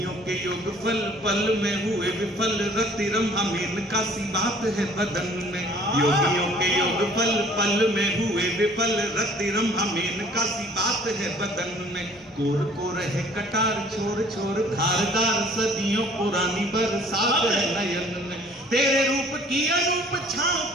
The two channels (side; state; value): both; normal; correlation 0.54